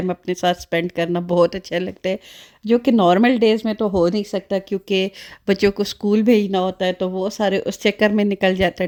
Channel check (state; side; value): identical; both; correlation 1.00